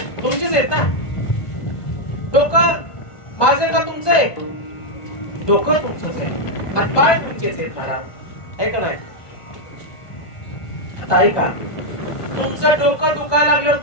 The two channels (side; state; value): right; late; 1.4 ms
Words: तुमचेच आहेत ना. डोकं माझे का तुमचं आहे? डोकं तुमचंच आहे, हातपाय तुमचेच आहेत महाराज, आहे का नाही. आता ऐका, तुमचं डोकं दुखायला लागल्यावर